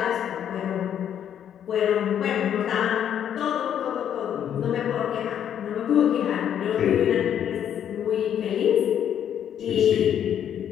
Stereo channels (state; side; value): quieter; right; 9.5 dB